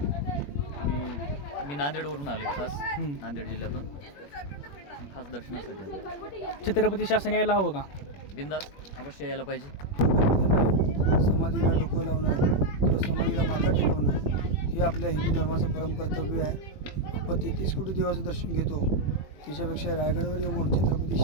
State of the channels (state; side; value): late; right; 21 ms